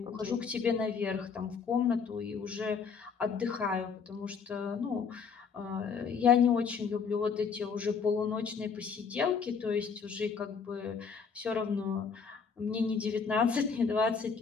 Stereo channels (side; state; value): right; quieter; 5.8 dB